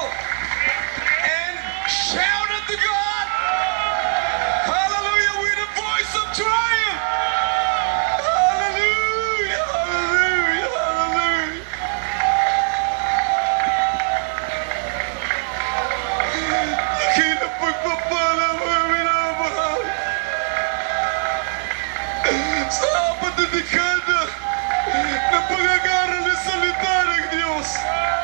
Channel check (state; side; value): silent; left; 62 dB below the other